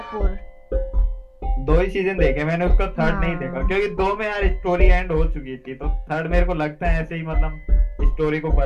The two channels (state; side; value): identical; both; correlation 1.00